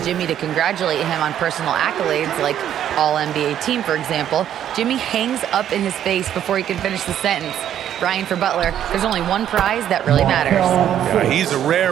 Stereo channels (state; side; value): quieter; left; 10.5 dB